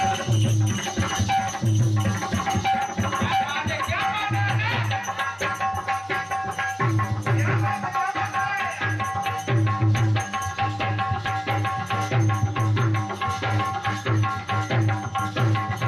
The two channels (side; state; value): both; identical; correlation 1.00